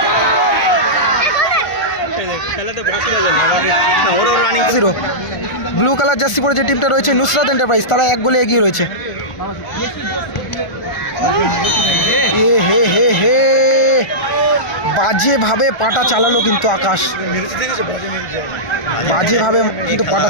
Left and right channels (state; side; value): late; right; 1.4 ms